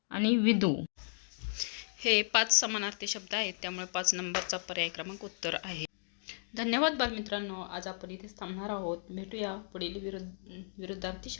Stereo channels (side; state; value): right; silent; digital silence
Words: आणि विदू हे 5 समानार्थी शब्द आहेत. त्यामुळे 5 नंबरचा पर्याय क्रमांक उत्तर आहे. धन्यवाद बालमित्रांनो. आज आपण इथेच थांबणार आहोत. भेटूया पुढील विरुद्धार्थी